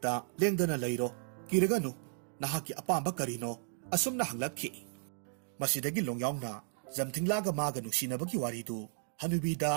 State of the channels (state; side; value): silent; left; 55 dB below the other